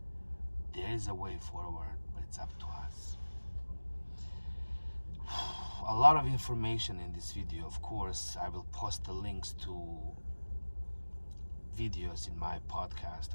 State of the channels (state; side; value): inverted; both; correlation -1.00